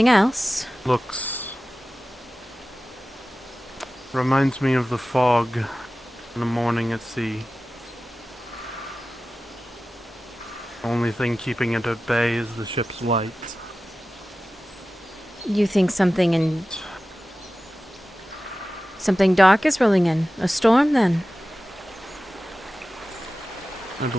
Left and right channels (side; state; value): both; normal; correlation 0.95